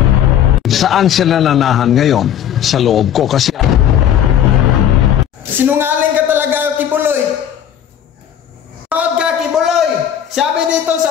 Saan sila nanahan ngayon? Sa loob ko. Kasi sinungaling ka talaga, Kibuloy. Proud ka, Kibuloy. Sabi dito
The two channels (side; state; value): right; quieter; 9.8 dB